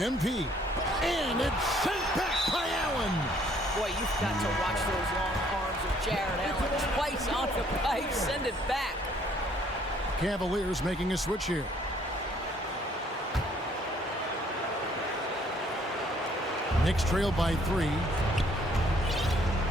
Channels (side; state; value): both; normal; correlation 0.63